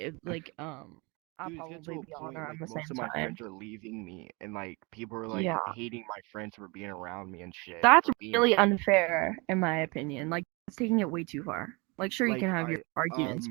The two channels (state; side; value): quieter; left; 27.8 dB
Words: Dude, probably it's getting be to a on point, around the most same of my time. friends are leaving me, and like people are like Yeah. hating my friends for being around me and shit. That's for being really unfair, in my opinion. Like, it's taking it way too far. Like, sure, you Like, can have your arguments,